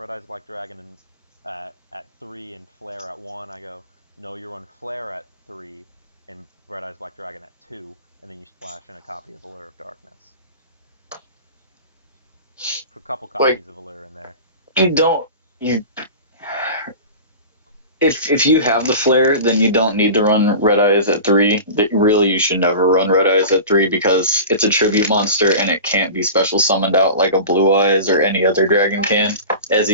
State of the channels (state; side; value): inverted; both; correlation -0.34